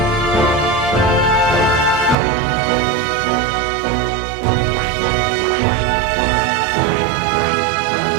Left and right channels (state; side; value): drops out; left; at 2.1 s